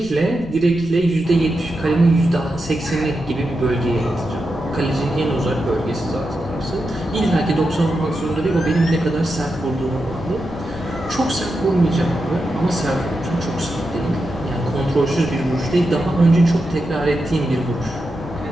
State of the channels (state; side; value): noise; left; rumble, 15 dB below the sound